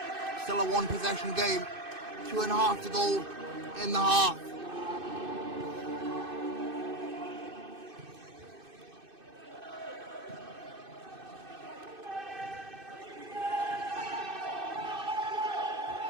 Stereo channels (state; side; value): late; left; 2.6 ms